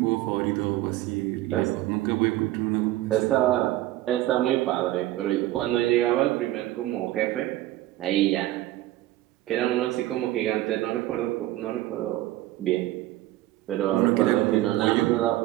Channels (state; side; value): quieter; left; 15.7 dB